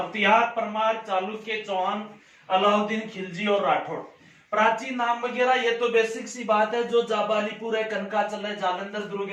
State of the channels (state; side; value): identical; both; correlation 1.00